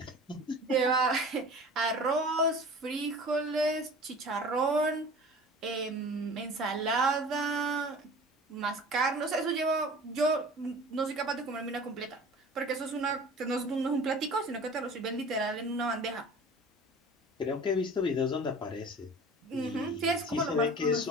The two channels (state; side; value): normal; both; correlation 0.41